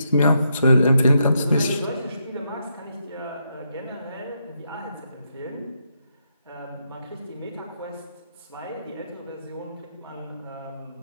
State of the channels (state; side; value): inverted; both; correlation -0.80